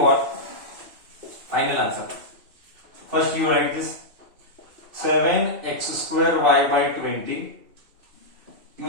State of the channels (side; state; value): left; late; 2.6 ms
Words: Final answer. First you write this 7x square y by 20.